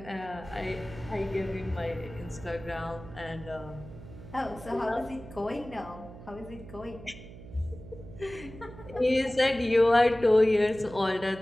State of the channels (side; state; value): right; noise; hum, 15 dB below the sound